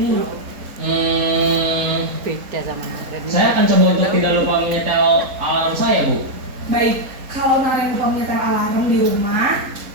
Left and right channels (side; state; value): left; late; 3.9 ms